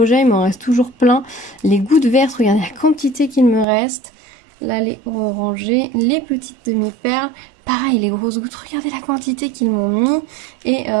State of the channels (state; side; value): drops out; left; at 3.7 s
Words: il m'en reste toujours plein. Les gouttes vertes, regardez la quantité qu'il me reste. Là, les orangées, les petites demi-perles. Pareil, les grosses gouttes, regardez la quantité qu'ils m'ont mis. Et